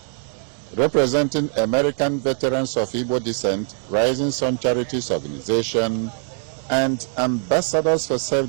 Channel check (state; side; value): silent; left; 64 dB below the other